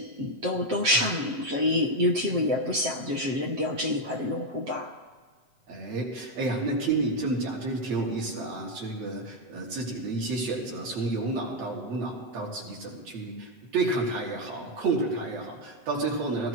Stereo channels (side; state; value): left; late; 7.9 ms